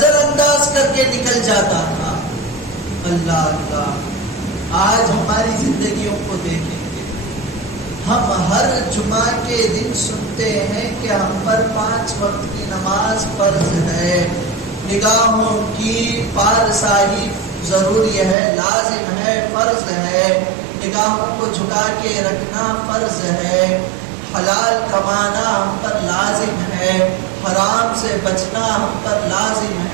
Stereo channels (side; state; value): left; drops out; at 18.4 s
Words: انداز کر کے نکل جاتا تھا. اللہ اللہ، آج ہماری زندگیوں کو دیکھیں گے. ہم ہر جمعہ کے دن سنتے ہیں کہ ہم پر 5 وقت کی نماز فرض ہے، نگاہوں کی پارسائی ضروری ہے، لازم ہے، فرض ہے، نگاہوں کو جھکا کے رکھنا فرض ہے، حلال کمانا ہم پر لازم ہے، حرام سے بچنا ہم پر لازم